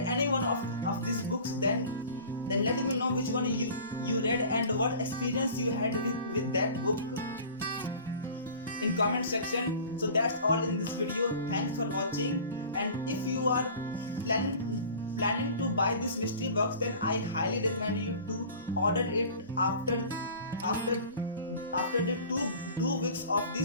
one of these books, then let me know which one you read and what experience you had with that book in comment section. So that's all in this video. Thanks for watching, and if you are planning to buy this mystery box, then I highly recommend you to order it after the two weeks of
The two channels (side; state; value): both; inverted; correlation -0.42